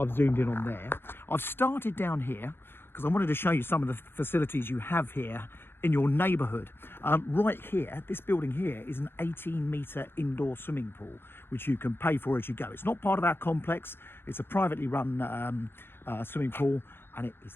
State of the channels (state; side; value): late; right; 0.11 ms